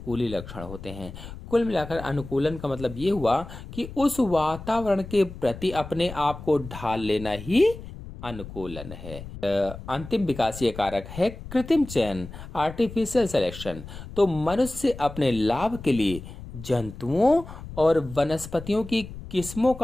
लक्षण होते हैं। कुल मिलाकर अनुकूलन का मतलब ये हुआ कि उस वातावरण के प्रति अपने आप को ढाल लेना ही अनुकूलन है। अंतिम विकासीय कारक है कृत्रिम चयन, आर्टिफिशियल सिलेक्शन। तो मनुष्य अपने लाभ के लिए जंतुओं और वनस्पतियों की किस्मों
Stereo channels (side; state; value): left; noise; rumble, 13 dB below the sound